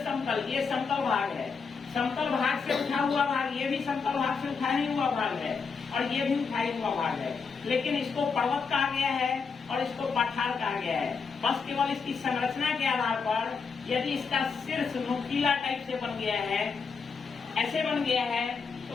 समतल, ये समतल भाग है। समतल भाग से उठा हुआ भाग, ये भी समतल भाग से उठा ही हुआ भाग है, और ये भी उठाई हुआ भाग है। लेकिन इसको पर्वत कहा गया है और इसको पठार कहा गया है। बस केवल इसकी संरचना के आधार पर, यदि इसका शीर्ष नुकीला टाइप से बन गया है, ऐसे बन गया है,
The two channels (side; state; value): right; quieter; 5.3 dB